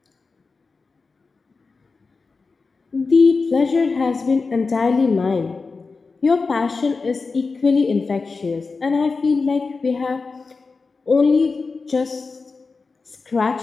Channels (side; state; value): right; quieter; 4.3 dB